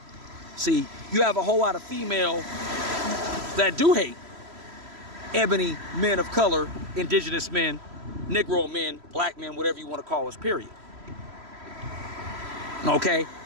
See, you have a whole lot of female that do hate ebony men of color, indigenous men, Negro men, black men, whatever you want to call us, period. Okay?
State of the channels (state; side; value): late; left; 3.0 ms